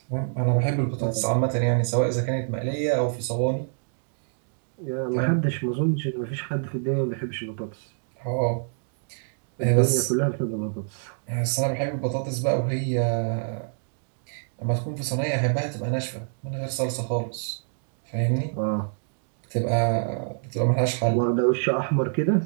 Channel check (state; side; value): silent; left; digital silence